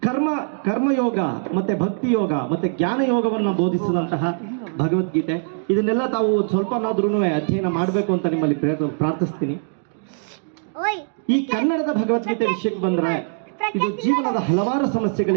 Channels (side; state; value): left; silent; digital silence